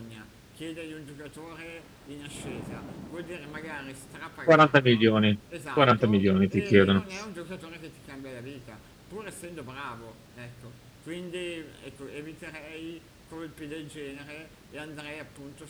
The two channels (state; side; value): identical; both; correlation 1.00